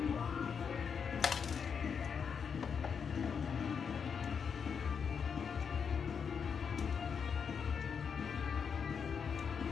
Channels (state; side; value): quieter; right; 6.6 dB